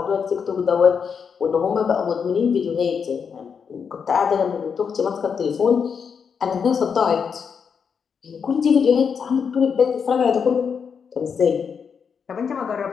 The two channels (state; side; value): quieter; right; 6.5 dB